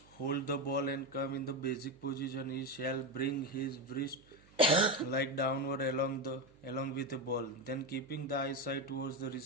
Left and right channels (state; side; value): noise; right; hum, 27 dB below the sound